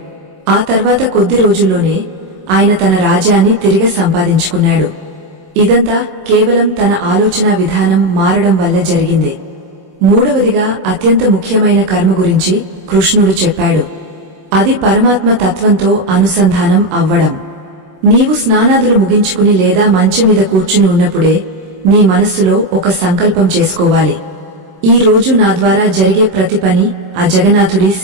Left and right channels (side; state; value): left; late; 27 ms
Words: ఆ తర్వాత కొద్ది రోజుల్లోనే ఆయన తన రాజ్యాన్ని తిరిగి సంపాదించుకున్నాడు. ఇదంతా కేవలం తన ఆలోచనా విధానం మారడం వల్ల జరిగింది. మూడవదిగా అత్యంత ముఖ్యమైన కర్మ గురించి కృష్ణుడు చెప్పాడు. అది పరమాత్మ తత్వంతో అనుసంధానం అవ్వడం. నీవు స్నానాదులు ముగించుకుని లేదా మంచం మీద కూర్చుని ఉన్నప్పుడే నీ మనస్సులో ఒక సంకల్పం చేసుకోవాలి. ఈ రోజు నా ద్వారా జరిగే ప్రతి పని ఆ జగన్నాథుడి